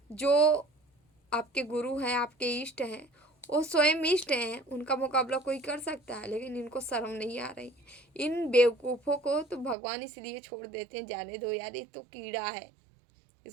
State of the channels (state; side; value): drops out; left; at 9.8 s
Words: आपके गुरु हैं, आपके इष्ट हैं, वो स्वयं इष्ट हैं, उनका मुकाबला कोई कर सकता है, लेकिन इनको शर्म नहीं आ रही। इन बेवकूफ़ों को तो भगवान इसलिए छोड़ देते हैं, जाने दो यार, ये तो कीड़ा है,